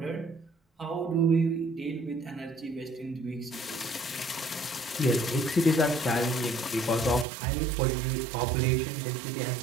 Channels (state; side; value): drops out; left; at 7.2 s